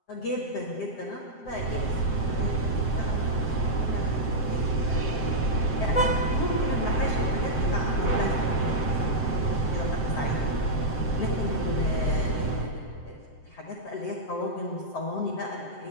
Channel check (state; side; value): late; right; 7.7 ms